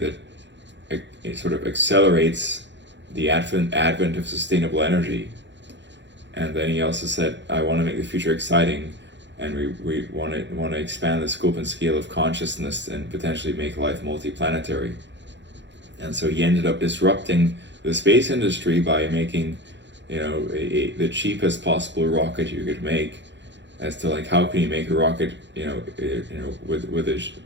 it sort of accelerates the advent of sustainable energy. And then he also said, I want to make the future exciting, and we want to expand the scope and scale of consciousness and potentially make life multiplanetary. And so he ended up disrupting the space industry by making, the cheapest possible rocket you could make, as to like how can you make a rocket,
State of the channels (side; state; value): left; late; 0.52 ms